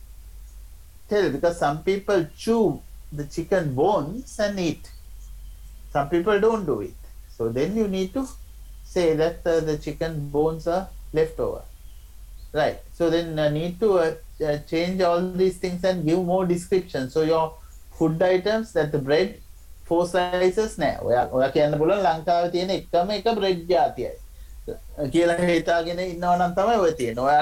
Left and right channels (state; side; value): identical; both; correlation 1.00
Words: tell because some people chew the chicken bones and eat. Some people don't do it. So then you need to say that the chicken bones are left over. Right. So then need to change all these things and give more description. So your food items, that the bread 4 slices නෑ. ඔයා කියන්න පුළුවන් ලංකාවේ තියෙන එකම එක bread ජාතියයි. කියලා හිතාගෙන ඉන්නවා නම් තමයි ඔය තියෙන්නේ.